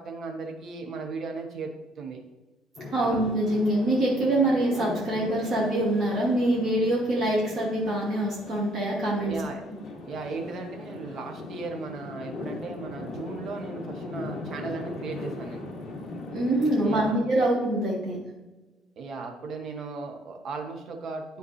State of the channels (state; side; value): normal; both; correlation 0.64